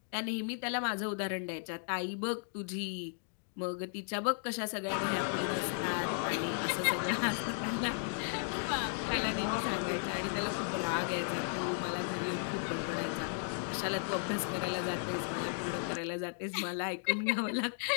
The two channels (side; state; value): right; silent; digital silence